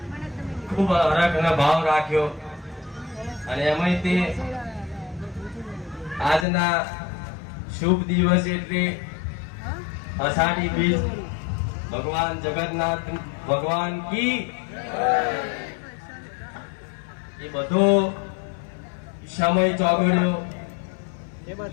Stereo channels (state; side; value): drops out; right; at 6.5 s